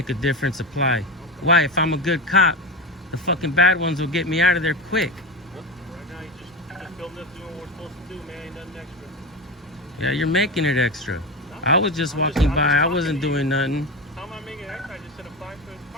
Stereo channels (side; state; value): both; normal; correlation 0.21